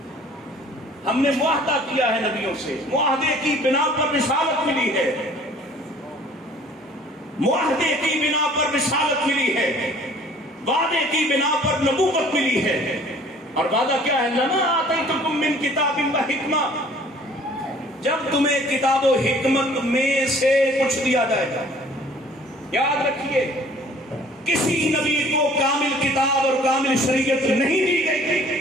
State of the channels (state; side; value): normal; both; correlation 0.53